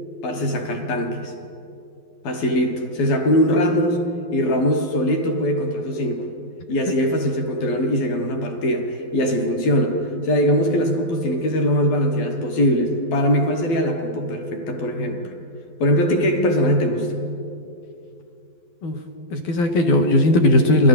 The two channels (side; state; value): right; late; 12 ms